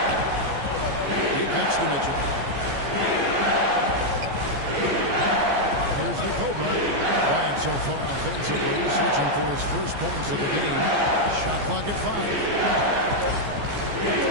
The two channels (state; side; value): late; left; 14 ms